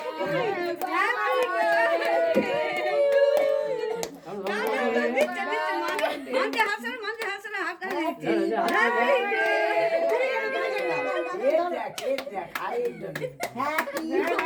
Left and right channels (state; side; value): identical; both; correlation 1.00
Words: মানতে হাসলে হাতটা